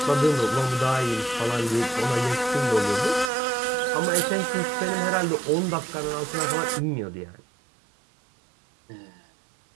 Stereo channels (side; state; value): left; drops out; at 3.3 s